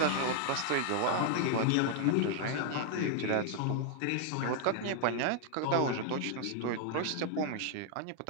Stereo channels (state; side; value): different; both; correlation 0.00